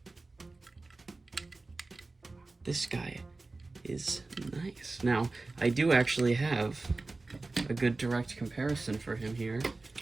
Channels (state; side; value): quieter; left; 3.4 dB